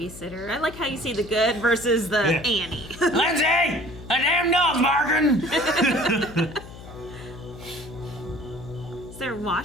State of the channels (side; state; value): left; noise; hum, 15 dB below the sound